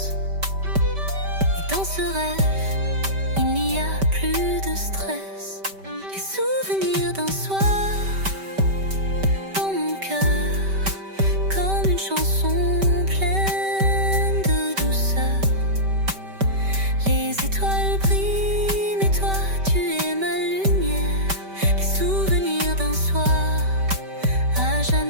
Et dans ce rêve, il n'y a plus de stress. Les souvenirs d'un soir dans mon cœur, comme une chanson pleine de douceur. Les étoiles brillent, mais toi tu es ma lumière. Les souvenirs d'un soir, à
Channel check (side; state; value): left; late; 5.2 ms